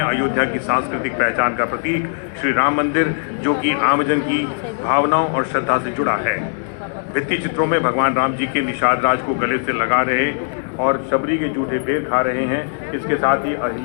अयोध्या की सांस्कृतिक पहचान का प्रतीक श्री राम मंदिर, जो कि आमजन की भावनाओं और श्रद्धा से जुड़ा है। भित्ति चित्रों में भगवान राम जी के निषाद राज को गले से लगा रहे और शबरी के जूठे पेड़ खा रहे हैं। इसके साथ ही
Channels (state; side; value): silent; right; 66 dB below the other